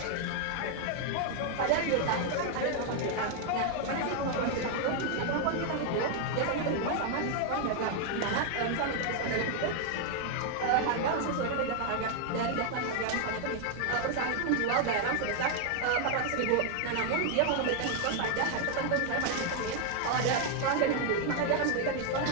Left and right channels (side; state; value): both; different; correlation 0.00